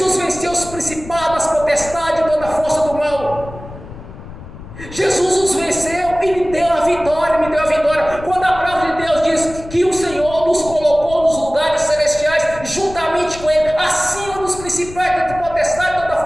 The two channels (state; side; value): noise; left; rumble, 14 dB below the sound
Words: venceu os principados, as potestades e toda a força do mal. Jesus os venceu e me deu a vitória, Quando a palavra de Deus diz que o Senhor nos colocou nos lugares celestiais, juntamente com Ele, acima dos principais, da potestade e toda a